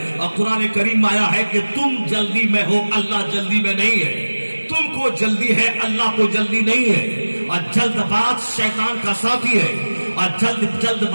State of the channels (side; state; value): both; inverted; correlation -1.00